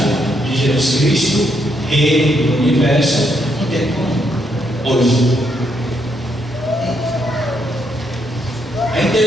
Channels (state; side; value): normal; both; correlation 0.76